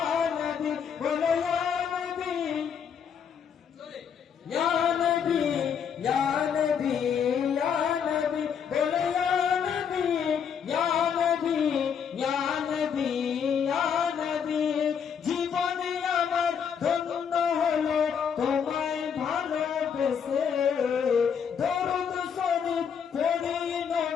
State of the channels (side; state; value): right; quieter; 7.4 dB